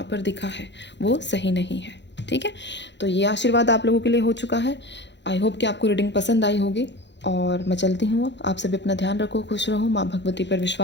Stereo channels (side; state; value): right; late; 0.52 ms